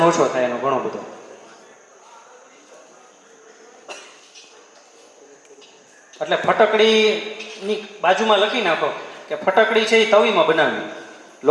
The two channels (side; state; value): both; identical; correlation 1.00